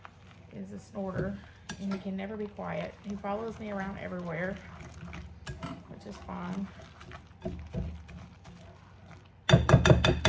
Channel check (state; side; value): identical; both; correlation 1.00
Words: is a snorter and he can never be quiet. He follows me around everywhere, which is fine.